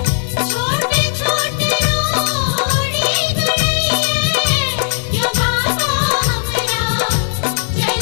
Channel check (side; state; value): right; silent; 65 dB below the other